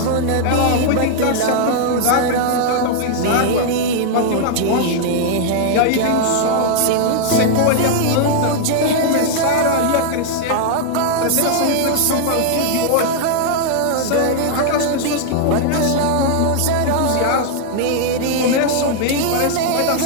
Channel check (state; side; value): different; both; correlation 0.00